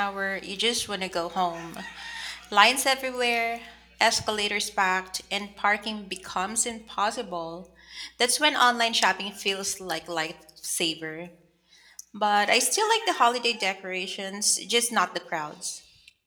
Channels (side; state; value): both; identical; correlation 1.00